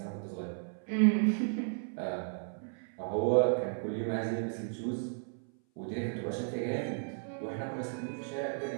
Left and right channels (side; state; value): left; silent; 55 dB below the other